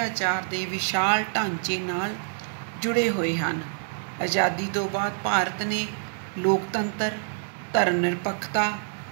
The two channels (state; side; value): silent; left; digital silence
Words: ਦੇ ਵਿਸ਼ਾਲ ਢਾਂਚੇ ਨਾਲ ਜੁੜੇ ਹੋਏ ਹਨ। ਆਜ਼ਾਦੀ ਤੋਂ ਬਾਅਦ ਭਾਰਤ ਨੇ ਲੋਕਤੰਤਰ, ਧਰਮ ਨਿਰਪੱਖਤਾ